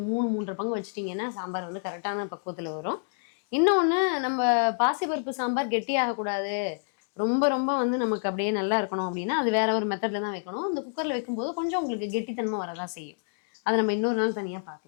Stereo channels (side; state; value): right; silent; digital silence